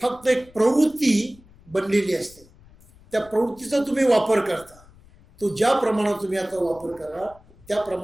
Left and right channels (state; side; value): noise; left; rumble, 26 dB below the sound